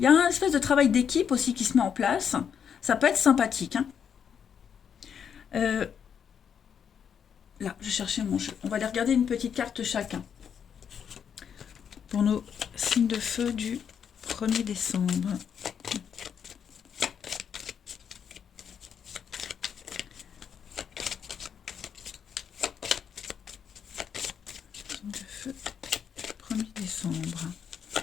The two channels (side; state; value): right; quieter; 7.7 dB